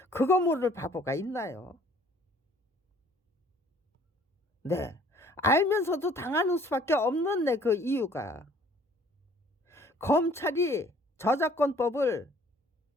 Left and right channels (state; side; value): normal; both; correlation 0.56